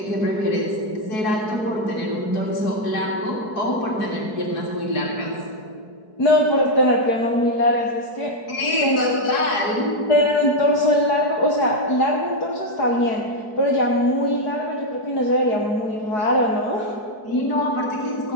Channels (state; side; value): late; right; 4.7 ms